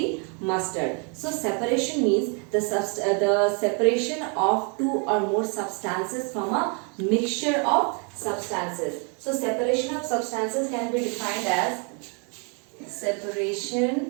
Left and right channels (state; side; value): quieter; left; 36.8 dB